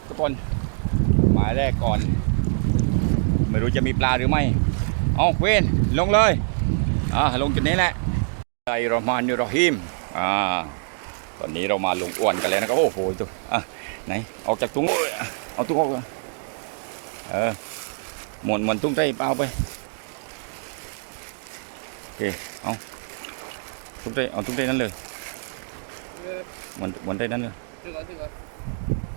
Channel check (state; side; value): silent; left; digital silence